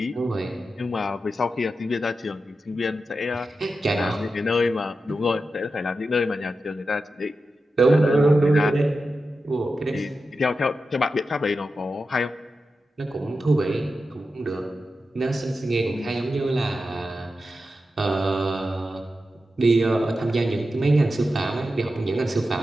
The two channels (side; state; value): both; normal; correlation 0.91